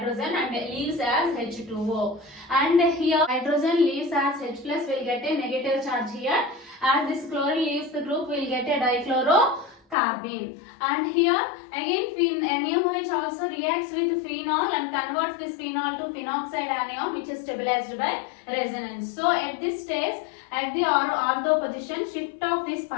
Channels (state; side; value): drops out; right; at 10.0 s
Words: and leaves as H2O. And here hydrogen leaves as H plus, will get a negative charge here. As this chlorine leaves the group, will get a dichlorocarbene. And here again NaOH also reacts with phenol and converts this phenol to phenoxide anion, which is stabilized by resonance. So at this stage, at the ortho position, shift of this